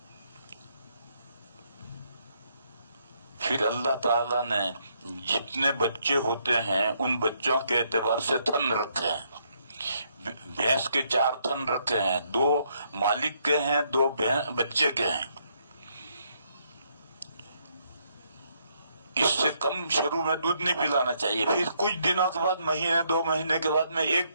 پھر اللہ تعالیٰ نے جتنے بچے ہوتے ہیں ان بچوں کے اعتبار سے تھن رکھے ہیں. بھینس کے 4 تھن رکھے ہیں، 2 مالک کے ہیں، 2 بچے کے ہیں. اس سے کم شروع میں دودھ نہیں پلانا چاہیے. پھر کچھ دنوں کے بعد، مہینے 2 مہینے کے بعد میں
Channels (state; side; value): inverted; both; correlation -0.73